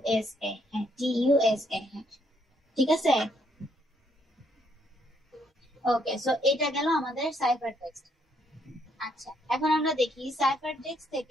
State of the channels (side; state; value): both; normal; correlation 0.71